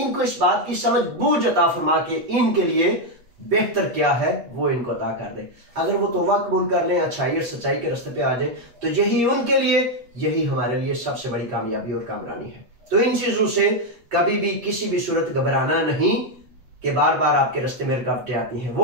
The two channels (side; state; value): left; late; 8.2 ms